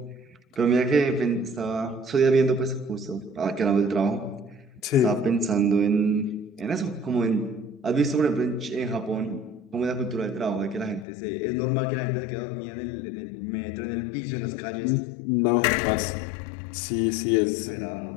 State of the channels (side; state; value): right; drops out; at 11.1 s